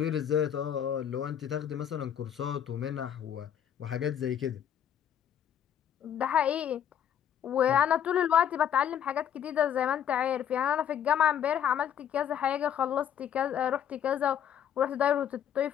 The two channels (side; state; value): right; quieter; 9.3 dB